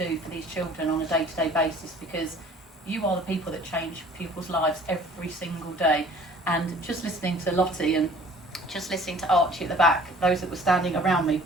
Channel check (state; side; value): normal; both; correlation 0.51